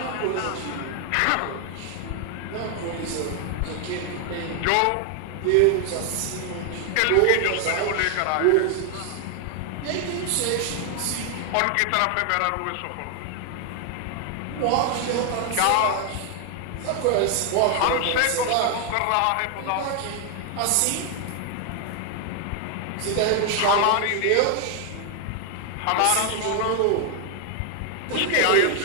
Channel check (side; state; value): both; different; correlation 0.00